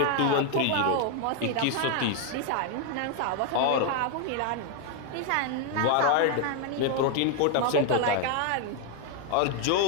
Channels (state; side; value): different; both; correlation 0.00